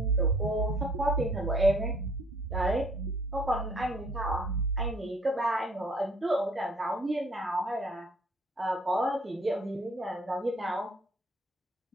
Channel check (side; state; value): both; normal; correlation 0.58